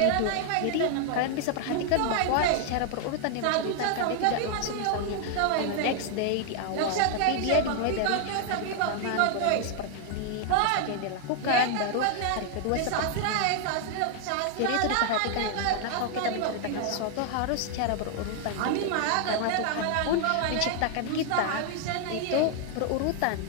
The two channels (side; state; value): both; different; correlation 0.00